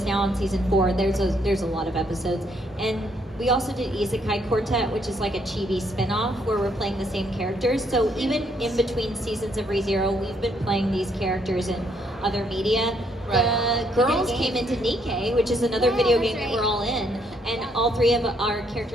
now on season 4, there's a lot of episodes. And we also did Isekai Quartet, which is like a chibi spin-off where we're playing the same characters. So even in between seasons of ReZero, we've been playing these characters in other media. The girls came into Nikkei, which is another video game that we're all in, and all 3 of our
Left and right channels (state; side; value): normal; both; correlation 0.71